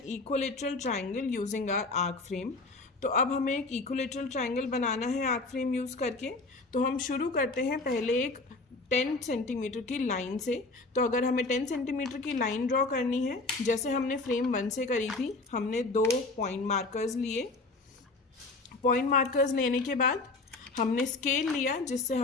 equilateral triangle using our arc frame. तो अब हमें एक इक्विलेटरल ट्राइंगल बनाना है आर्क फ्रेम यूज़ करके। तो हम शुरू करते हैं पहले एक 10 सेंटीमीटर की लाइन से। तो अगर हमें 10 सेंटीमीटर की लाइन ड्रॉ करनी है, जैसे हमने फ्रेम 1 से करी थी, हमने 2 पॉइंट मार्कर्स लिए। पॉइंट मार्कर्स लेने के बाद हमने स्केल लिया जिससे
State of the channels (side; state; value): right; quieter; 3.4 dB